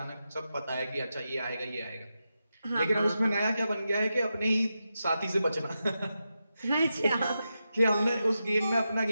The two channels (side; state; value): both; inverted; correlation -0.89